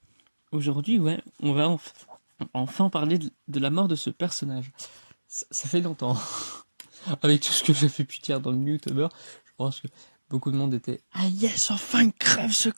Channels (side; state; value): both; inverted; correlation -1.00